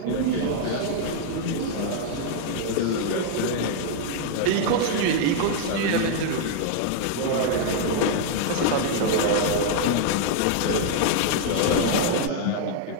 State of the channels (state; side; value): different; both; correlation -0.01